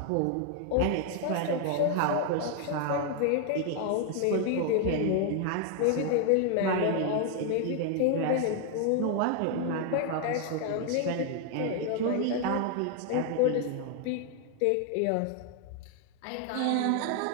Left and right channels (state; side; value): different; both; correlation 0.00